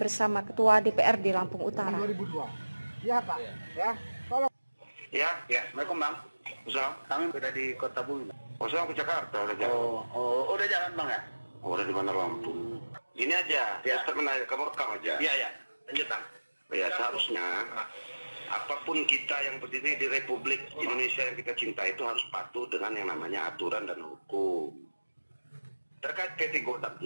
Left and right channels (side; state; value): both; inverted; correlation -1.00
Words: Ketua DPRD Lampung Utara. 2002. Ya Pak, ya. Tolong. Ya, Assalamualaikum Bang. Assalamualaikum. Kami sudah di Kota Bumi. Oh, saya ke Jakarta, udah jalan. Udah jalan Bang ya? Oh, udah di mana Lampung. Ini aja, ya. Kamu rekam aja. Iya, lanjut Bang. Ya, seharusnya apapun kita yang berdiri di Republik Indonesia yang kita cinta itu harus patuh dengan yang namanya aturan dan hukum. Terkait PT Godam